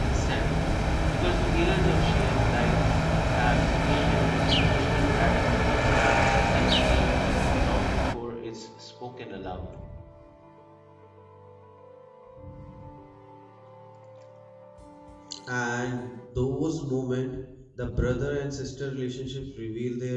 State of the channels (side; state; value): both; identical; correlation 1.00